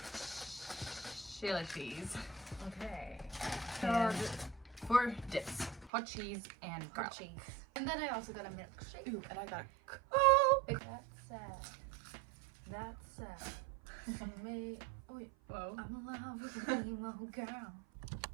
Chili cheese. Okay. And for dips, hot cheese and garlic. Cheese. And then I also got a milkshake. Ooh, and I got a Coke. That's me. Oh, wait. Whoa. I'm in love with a emo girl.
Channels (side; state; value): left; drops out; at 5.9 s